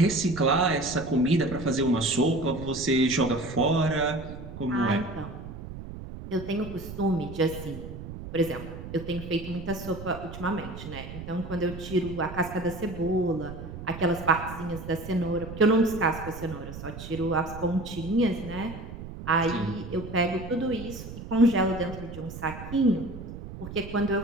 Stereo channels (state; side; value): noise; right; rumble, 11 dB below the sound